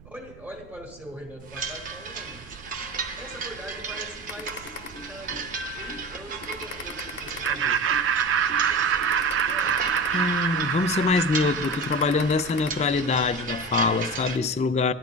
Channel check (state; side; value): noise; right; rumble, 21 dB below the sound